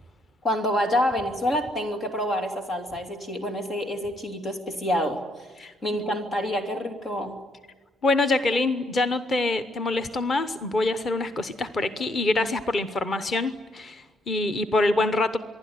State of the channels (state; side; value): normal; both; correlation 0.72